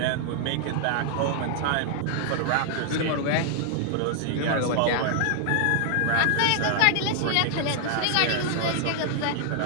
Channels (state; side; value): different; both; correlation -0.01